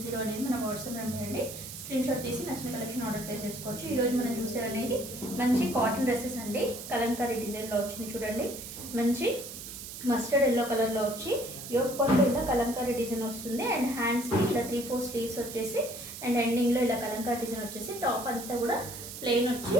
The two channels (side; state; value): right; noise; hiss, 10 dB below the sound